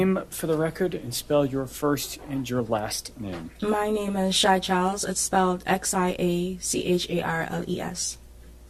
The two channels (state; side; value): identical; both; correlation 1.00